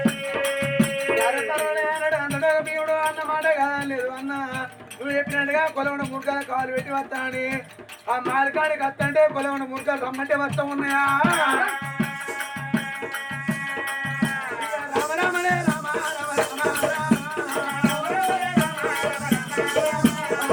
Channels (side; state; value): both; identical; correlation 1.00